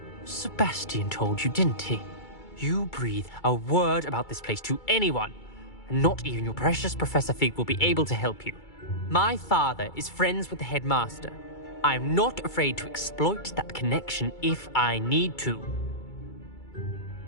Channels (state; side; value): late; right; 2.3 ms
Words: Sebastian told you, didn't he? You breathe a word about this place to anyone, and not even your precious Professor Fig will be able to help you. My father is friends with the headmaster. I'm not afraid to exploit that connection if I need to.